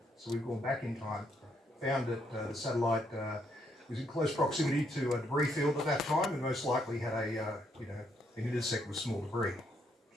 So we've gone back in time, found that the satellite was in close proximity to a debris field at that time, and most likely had an intersect with small debris.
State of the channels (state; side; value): normal; both; correlation 0.74